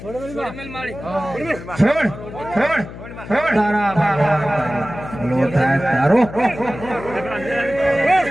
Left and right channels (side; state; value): left; noise; hum, 13 dB below the sound